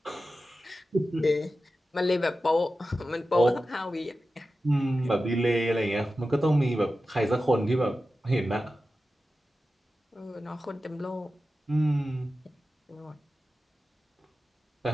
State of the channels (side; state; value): both; normal; correlation 0.93